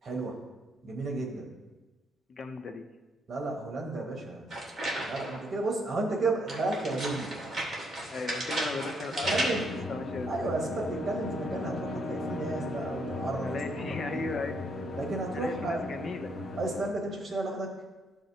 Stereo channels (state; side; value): normal; both; correlation 0.72